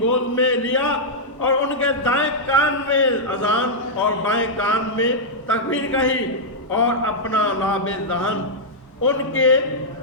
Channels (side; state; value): both; normal; correlation -0.07